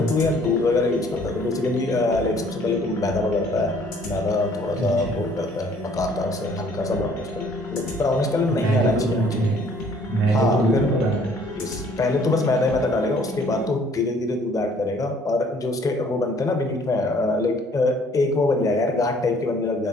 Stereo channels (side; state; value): both; normal; correlation 0.59